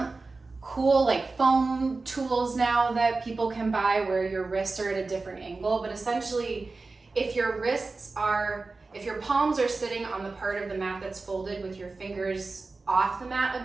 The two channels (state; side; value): quieter; left; 3.7 dB